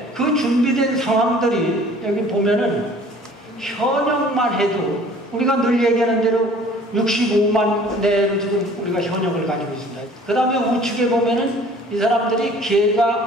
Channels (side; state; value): both; normal; correlation 0.51